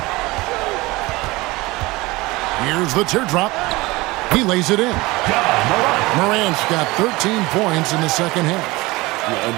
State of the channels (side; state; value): left; quieter; 21.6 dB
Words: Here's the teardrop. He lays it in. Morant's got 13 points in the second half.